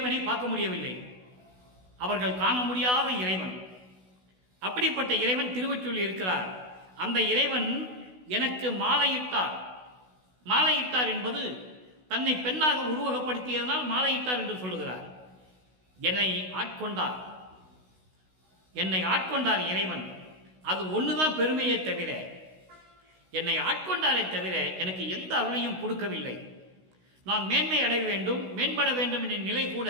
பார்க்க முடியவில்லை, அவர்கள் காண முடியாத இறைவன். அப்படிப்பட்ட இறைவன் திருவொற்றியூரில் இருக்கிறார். அந்த இறைவன் எனக்கு மாலையிட்டார். மாலையிட்டார் என்பது தன்னை பெண்ணாக உருவகப்படுத்தியதனால் மாலையிட்டார் என்று சொல்லுகிறார். என்னை ஆட்கொண்டார், என்னை ஆட்கொண்டார் இறைவன். அது ஒண்ணுதான் பெருமையை தவிர, என்னை ஆட்கொண்டாரை தவிர எனக்கு எந்த அருளையும் கொடுக்கவில்லை. நான் மேன்மை அடைய வேண்டும், மேம்பட வேண்டும் என்ற நிலை கூட,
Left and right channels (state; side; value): late; left; 16 ms